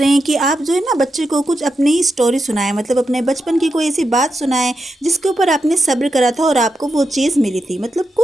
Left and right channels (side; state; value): both; normal; correlation 0.87